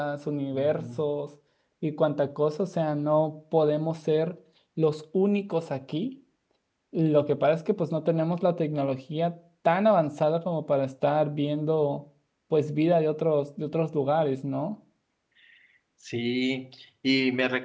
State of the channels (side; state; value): both; identical; correlation 1.00